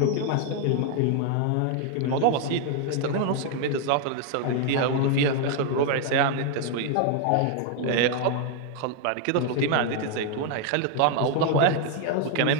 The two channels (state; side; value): different; both; correlation 0.00